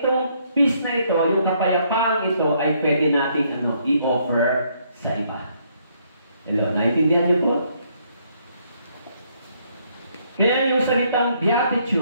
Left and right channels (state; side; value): inverted; both; correlation -0.70